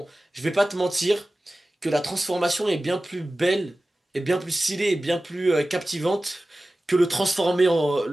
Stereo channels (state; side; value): normal; both; correlation 0.96